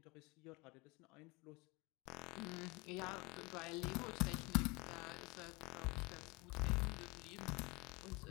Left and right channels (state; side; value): quieter; right; 25.7 dB